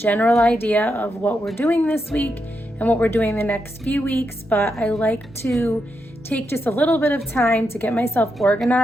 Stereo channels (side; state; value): both; normal; correlation 0.84